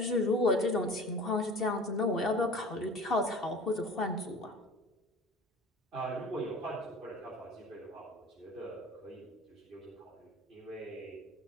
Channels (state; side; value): normal; both; correlation 0.41